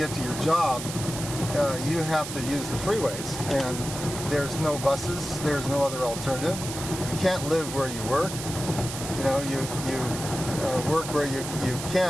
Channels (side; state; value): right; noise; hiss, 8 dB below the sound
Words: to your job, you have to use the freeways. And there's no buses, there's no other alternative. You can't live where you work. You work where you